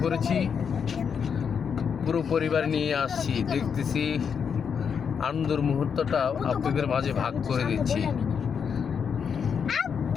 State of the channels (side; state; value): right; quieter; 6.8 dB